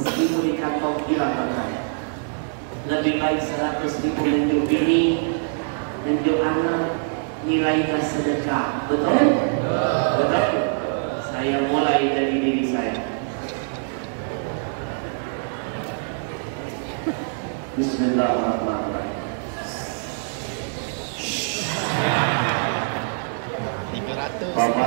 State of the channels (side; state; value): left; silent; 58 dB below the other